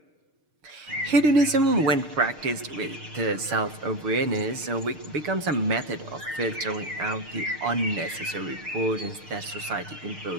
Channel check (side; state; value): left; late; 6.6 ms